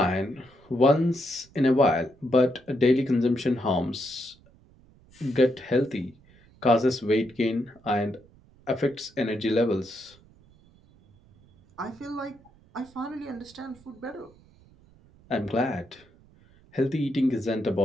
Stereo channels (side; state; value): right; noise; rumble, 28 dB below the sound